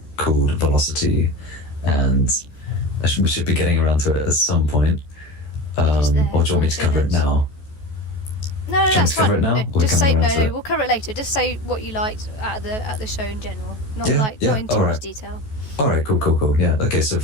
called Velocity, and we should be getting around to it at some point. It is there. Or do you want me to cover it now? No, that's fine. No, just say we'll cover it later. Just say what you liked at the show in general, not in too much detail. Alright, cool. Yeah, okay, so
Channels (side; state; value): right; late; 14 ms